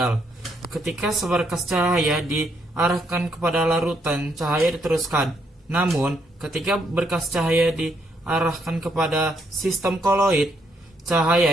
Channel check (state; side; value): normal; both; correlation 0.74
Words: Ketika seberkas cahaya diarahkan kepada larutan, cahaya diteruskan. Namun, ketika berkas cahaya diarahkan kepada sistem koloid, cahaya